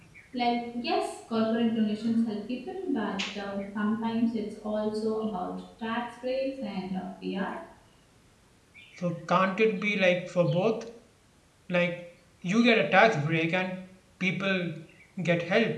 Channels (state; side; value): identical; both; correlation 1.00